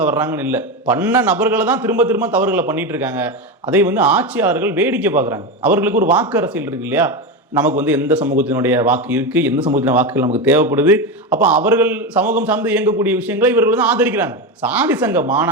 வர்றாங்கன்னு இல்லை. பண்ண நபர்களை தான் திரும்ப திரும்ப தவறுகளை பண்ணிட்டு இருக்காங்க. அதை வந்து ஆட்சியாளர்கள் வேடிக்கை பார்க்குறாங்க. அவர்களுக்கு ஒரு வாக்கு அரசியல் இருக்கு இல்லையா, நமக்கு வந்து எந்த சமூகத்தினுடைய வாக்கு இருக்கு, எந்த சமூகத்தின வாக்குகள் நமக்கு தேவைப்படுது, அப்போ அவர்கள் சமூகம் சார்ந்து இயங்கக்கூடிய விஷயங்களை இவர்கள் வந்து ஆதரிக்கிறாங்க. சாதி சங்க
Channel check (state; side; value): normal; both; correlation 0.17